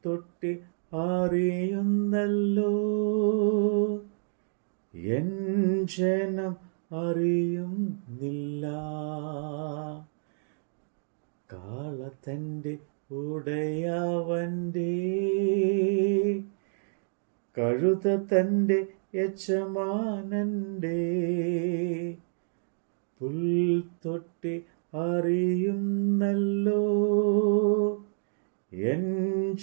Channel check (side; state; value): left; silent; digital silence